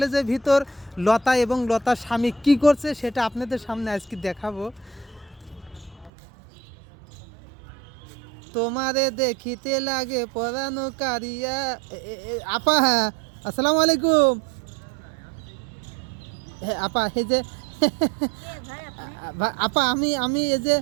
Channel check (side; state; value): left; drops out; at 6.1 s